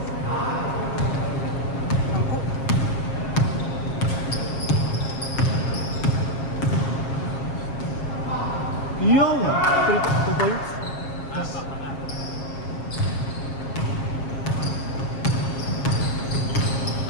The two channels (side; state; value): right; late; 7.4 ms